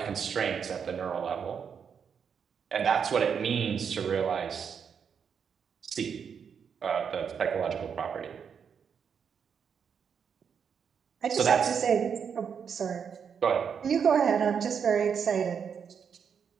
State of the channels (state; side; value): quieter; left; 7.0 dB